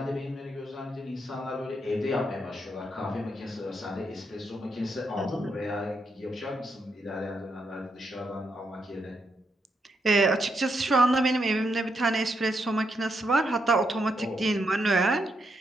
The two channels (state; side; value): normal; both; correlation 0.80